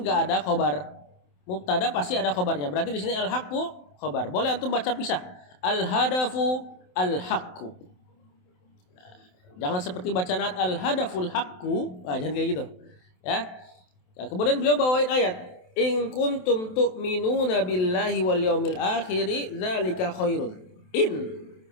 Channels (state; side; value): late; right; 27 ms